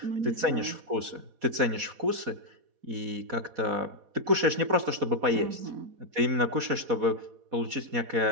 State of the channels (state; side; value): late; left; 4.1 ms